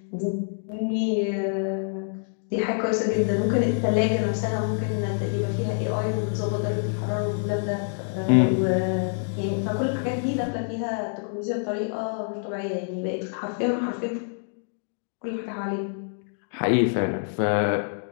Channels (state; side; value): silent; right; digital silence